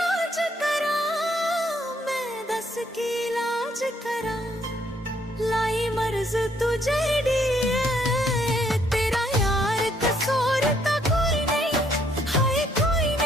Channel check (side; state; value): both; normal; correlation 0.69